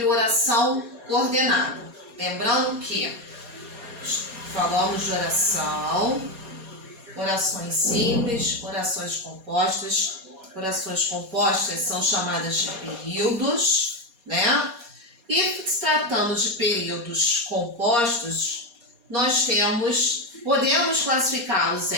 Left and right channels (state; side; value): late; left; 4.2 ms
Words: oração coordenada. Lembrando que falamos de orações simples, orações compostas. Orações compostas são chamadas de períodos, né? E se tratando de períodos compostos, nós podemos classificá-los